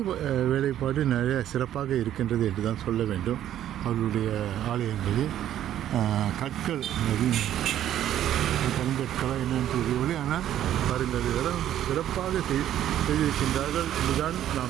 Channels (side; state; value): left; quieter; 11.6 dB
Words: வேலைப்பாடு நிறைய சிறப்பாக இருக்கின்றது என்று தான் சொல்ல வேண்டும். அவர்களுடைய ஆலயங்களில் கற்கள் கருங்கற்களா என்னென்னு தெரியவில்லை, ஆனால் பாருங்கள், இதெல்லாம் சிறப்பாக செய்திருக்கின்றார்கள் என்றுதான்